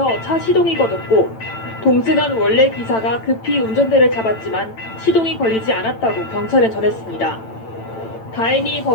차 시동이 꺼졌고 동승한 원래 기사가 급히 운전대를 잡았지만 시동이 걸리지 않았다고 경찰에 전했습니다. 다행히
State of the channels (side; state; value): right; late; 9.0 ms